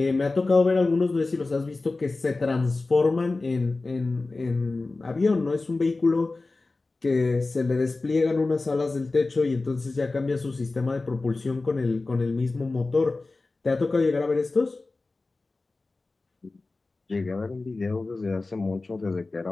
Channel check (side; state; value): right; quieter; 3.4 dB